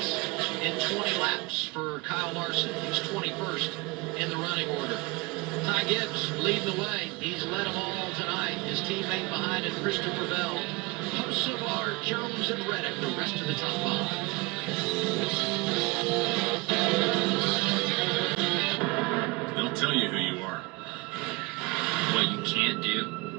in 20 laps for Kyle Larson. He's 21st in the running order. Ty Gibbs leading the way. He's led them all tonight. His teammate behind him, Christopher Bell. Hocevar, Jones, and Reddick, the rest of the top 5. They'll tell you who you are. What you can't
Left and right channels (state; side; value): quieter; left; 25.4 dB